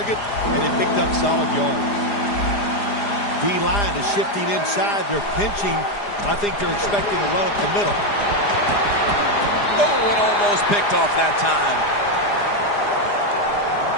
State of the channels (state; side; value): late; right; 4.9 ms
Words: and it picked up solid yards. D-line is shifting inside. They're pinching. I think they're expecting a run up the middle. Oh, it almost picked off that time.